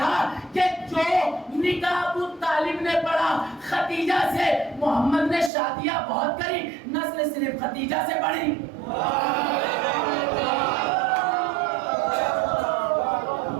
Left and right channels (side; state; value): left; drops out; at 5.5 s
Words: کہ جو نکاح ابو طالب نے پڑھا خدیجہ سے، محمد نے شادیاں بہت کری، نسل صرف خدیجہ سے بڑھی۔